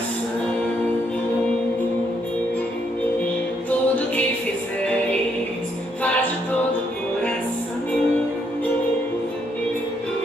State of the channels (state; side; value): normal; both; correlation 0.74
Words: Tudo que fizeres, faz de todo o coração.